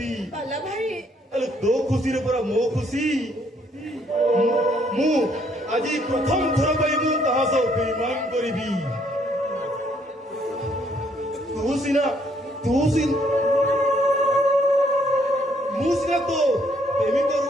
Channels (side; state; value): both; normal; correlation 0.67